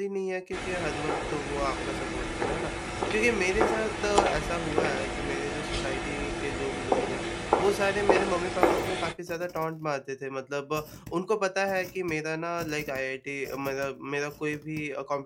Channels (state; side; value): identical; both; correlation 1.00